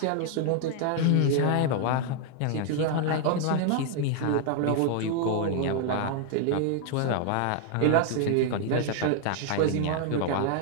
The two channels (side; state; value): both; different; correlation 0.00